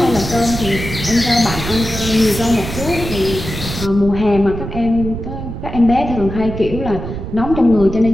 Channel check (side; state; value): right; noise; rumble, 7 dB below the sound